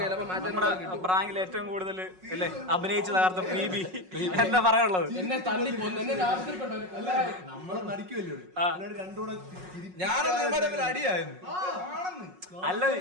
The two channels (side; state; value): left; late; 5.4 ms